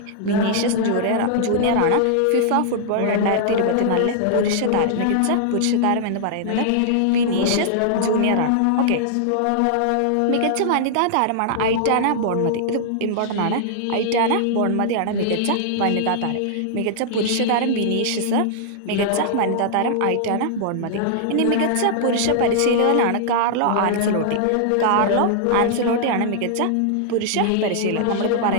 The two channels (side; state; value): both; different; correlation -0.01